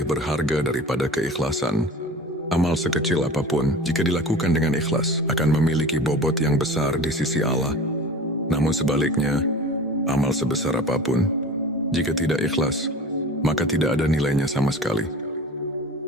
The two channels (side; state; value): both; normal; correlation 0.37